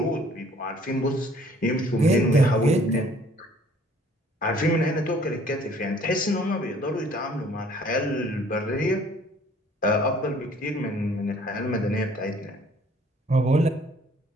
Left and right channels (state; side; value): normal; both; correlation 0.56